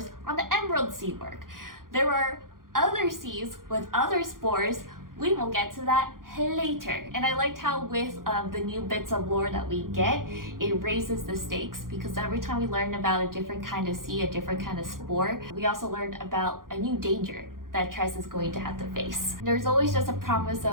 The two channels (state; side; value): late; left; 0.91 ms